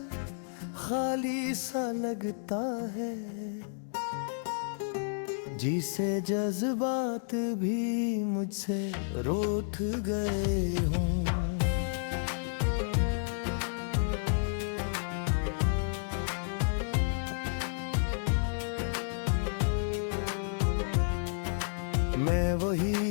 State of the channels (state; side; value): silent; right; digital silence